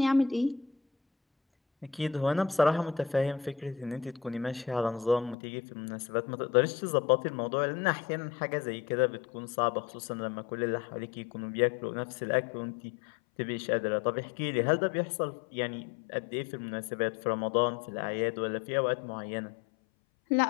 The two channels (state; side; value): drops out; right; at 5.4 s